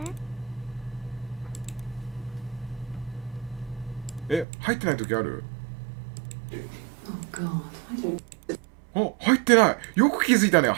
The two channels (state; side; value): drops out; left; at 4.5 s